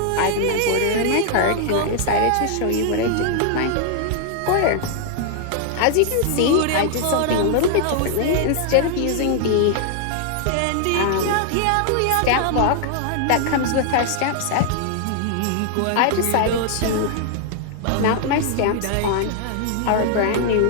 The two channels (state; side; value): different; both; correlation 0.00